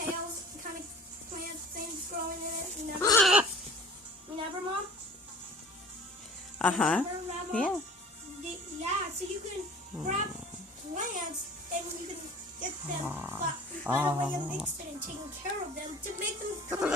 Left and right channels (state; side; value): normal; both; correlation 0.46